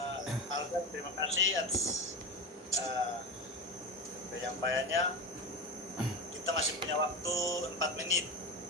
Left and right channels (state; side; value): normal; both; correlation 0.21